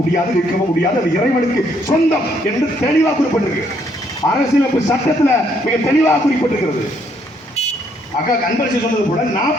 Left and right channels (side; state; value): both; normal; correlation 0.70